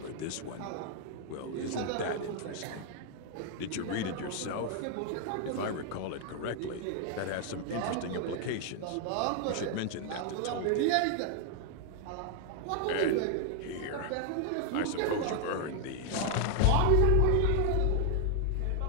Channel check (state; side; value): different; both; correlation 0.00